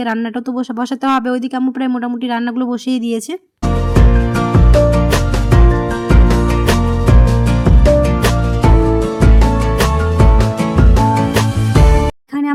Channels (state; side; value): identical; both; correlation 1.00